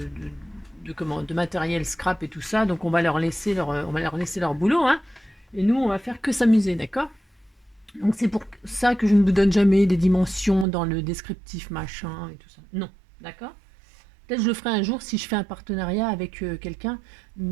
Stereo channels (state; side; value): drops out; left; at 10.7 s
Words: matériel scrap et tout ça. Donc on va leur laisser leur boulot, hein. Et nous, on va faire que s'amuser, d'accord? Donc c'est pour ça que je ne vous donne jamais des dimensions dans le descriptif machin et tout ça. Non, d'accord? Peut-être je le ferai un jour si je fais un partenariat avec quelqu'un,